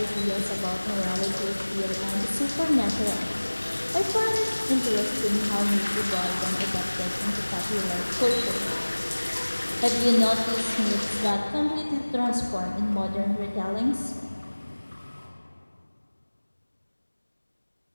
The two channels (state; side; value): inverted; both; correlation -1.00